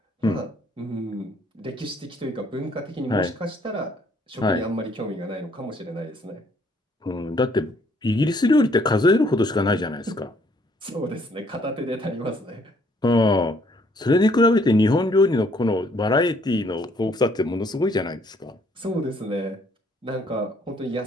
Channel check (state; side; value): normal; both; correlation 0.65